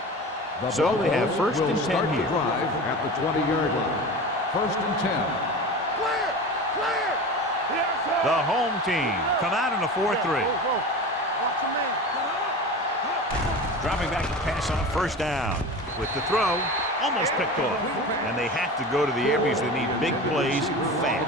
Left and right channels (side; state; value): both; normal; correlation 0.31